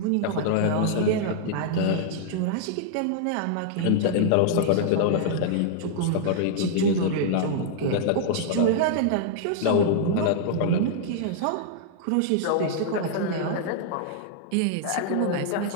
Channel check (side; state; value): both; different; correlation -0.01